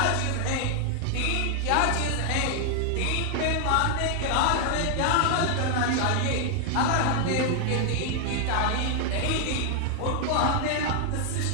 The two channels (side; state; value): both; different; correlation 0.00